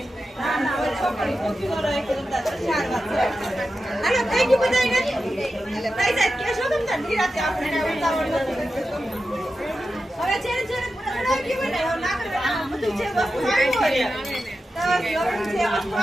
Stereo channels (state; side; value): normal; both; correlation 0.91